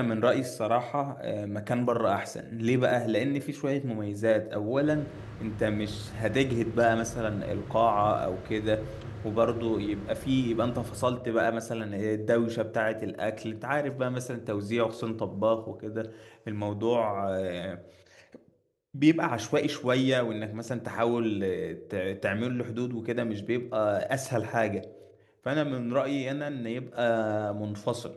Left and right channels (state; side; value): identical; both; correlation 1.00